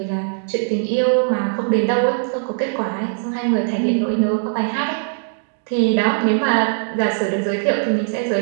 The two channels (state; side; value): silent; left; digital silence